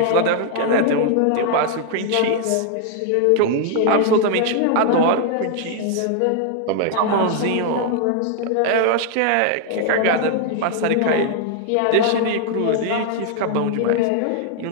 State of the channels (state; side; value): different; both; correlation 0.00